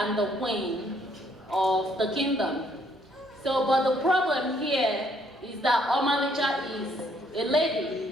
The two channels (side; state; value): both; normal; correlation 0.67